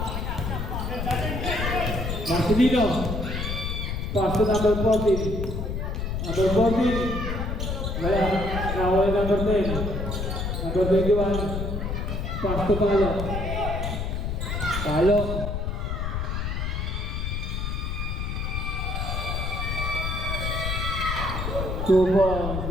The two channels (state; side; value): noise; left; rumble, 2 dB below the sound